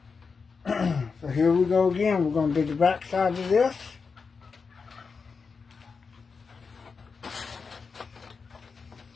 So here we go again. We're going to do the back side of this.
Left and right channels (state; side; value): quieter; right; 5.1 dB